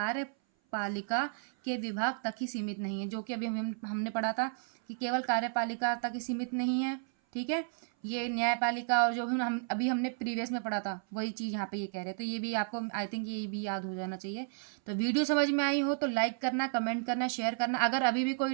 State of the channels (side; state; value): left; silent; 56 dB below the other